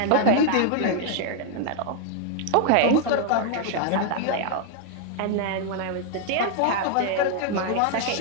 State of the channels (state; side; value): different; both; correlation 0.00